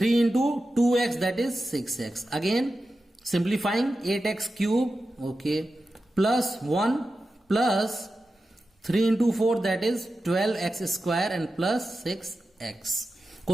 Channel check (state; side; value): normal; both; correlation 0.92